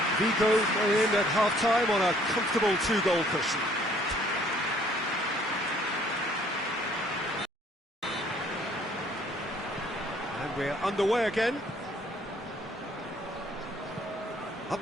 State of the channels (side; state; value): both; normal; correlation 0.60